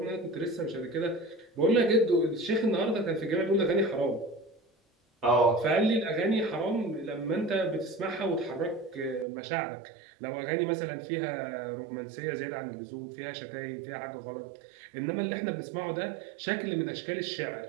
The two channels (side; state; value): left; drops out; at 9.2 s